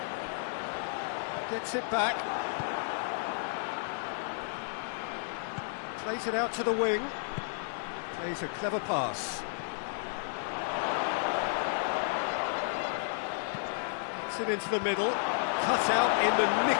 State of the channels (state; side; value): silent; right; digital silence